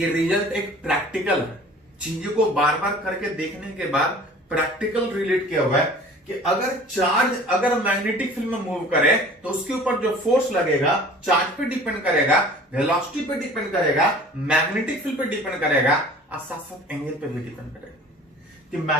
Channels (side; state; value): both; normal; correlation 0.46